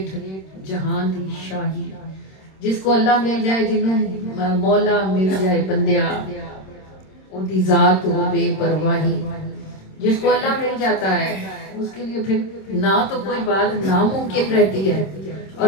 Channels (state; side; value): late; right; 26 ms